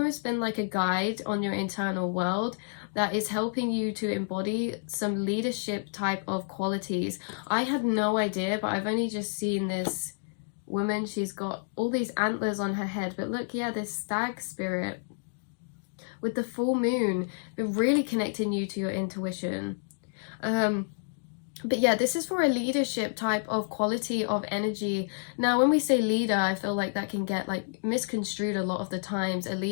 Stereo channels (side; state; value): right; silent; digital silence